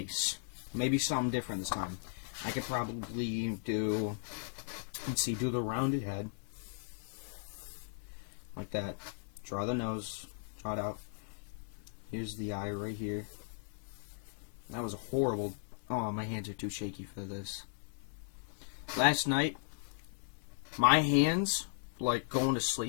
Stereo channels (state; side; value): silent; right; digital silence